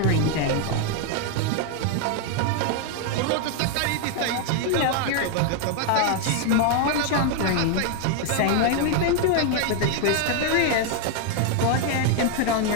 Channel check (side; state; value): both; different; correlation 0.00